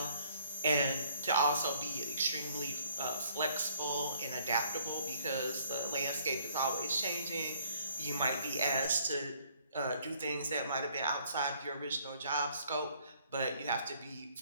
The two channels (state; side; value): inverted; both; correlation -0.63